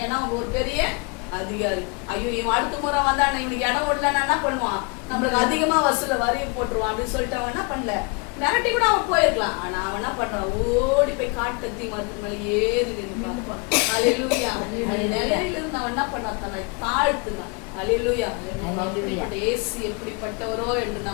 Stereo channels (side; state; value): right; quieter; 32.1 dB